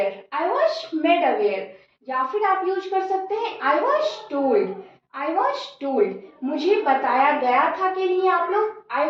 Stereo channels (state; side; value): identical; both; correlation 1.00